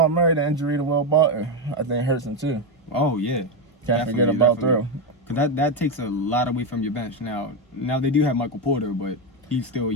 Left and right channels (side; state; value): both; normal; correlation 0.08